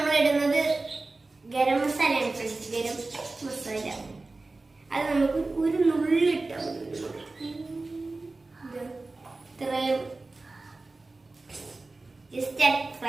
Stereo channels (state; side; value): quieter; left; 3.3 dB